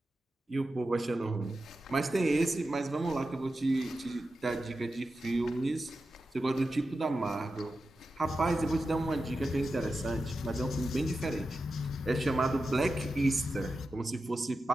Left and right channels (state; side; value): normal; both; correlation 0.91